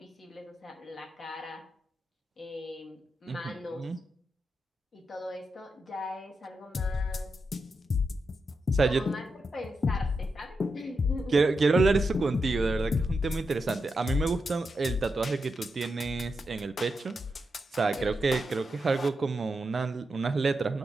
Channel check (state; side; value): normal; both; correlation 0.87